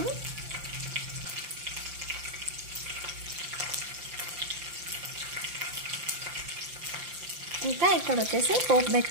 ఇంకా ఇక్కడ వచ్చేసి పోపు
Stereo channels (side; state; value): left; late; 5.8 ms